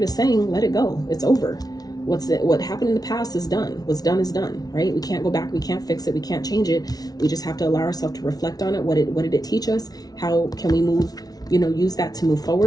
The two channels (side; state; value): right; late; 0.19 ms